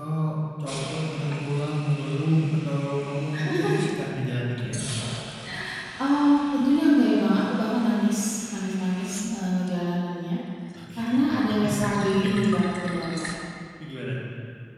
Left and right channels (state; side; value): identical; both; correlation 1.00